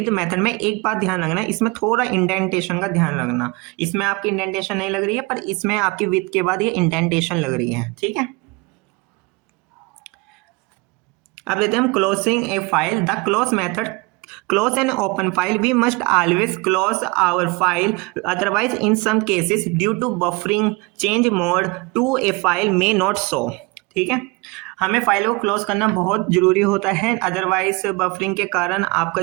मेथड में एक बात ध्यान रखना है, इसमें थोड़ा इंडेंटेशन का ध्यान रखना। इसमें आपकी इंडेंटेशन नहीं लग रही है, पर इसमें आपकी विद के बाद ये इंडेंटेशन लग रही है। ठीक है, अब लेते हैं हम closing A file. The close method close an open file, we must always close our file, otherwise in some cases due to buffering change mode to a file may not show। ठीक है, हमें file को close करना बहुत जरूरी होता है, otherwise buffering के कारण आपका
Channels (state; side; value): quieter; left; 25.1 dB